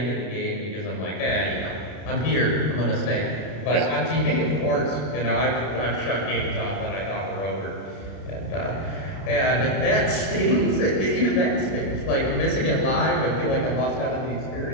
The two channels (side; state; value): right; late; 33 ms